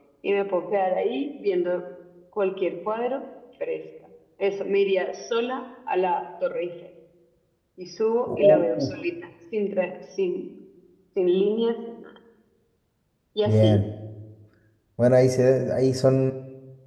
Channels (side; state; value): both; identical; correlation 1.00